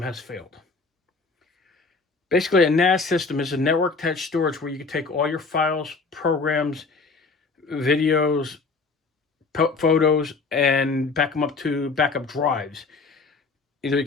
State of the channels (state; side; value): quieter; right; 4.2 dB